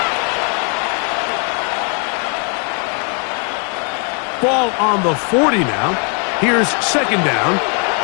6. Ball on the 40 now. Here's second down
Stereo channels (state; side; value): quieter; right; 38.2 dB